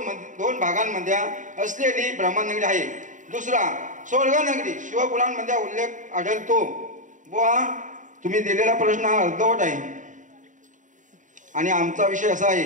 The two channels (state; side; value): late; left; 0.37 ms